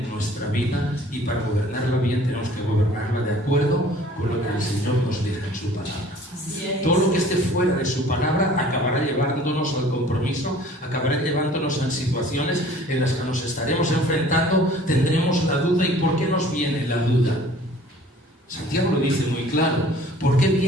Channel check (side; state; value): both; normal; correlation 0.51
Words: nuestra vida, y para gobernarla bien tenemos que gobernarla de acuerdo con lo que el Señor nos dice en su palabra. Todo lo que esté fuera de su palabra acabará llevándonos al compromiso, acabará llevándonos a situaciones en las que nos estaremos enfrentando, tendremos la duda. ¿Y por qué nos viene la duda? Santiago lo dice muy claro. ¿Por qué